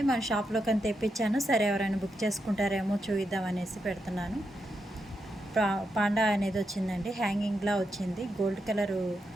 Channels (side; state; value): both; normal; correlation 0.84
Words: మన షాప్లో కానీ తెప్పించాను. సరే ఎవరైనా బుక్ చేసుకుంటారేమో చూద్దాం అనేసి పెడుతున్నాను. పాండా అనేది వచ్చిందండి, హ్యాంగింగ్లా వచ్చింది. గోల్డ్ కలరు